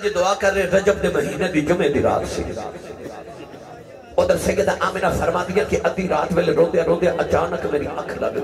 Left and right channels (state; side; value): identical; both; correlation 1.00